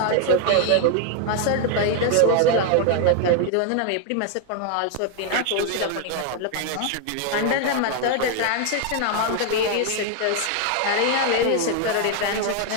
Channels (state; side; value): different; both; correlation 0.00